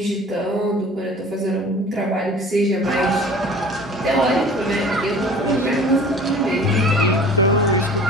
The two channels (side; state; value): both; normal; correlation 0.45